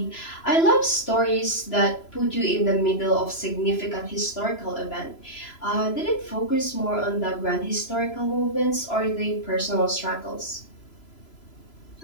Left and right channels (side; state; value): right; late; 3.0 ms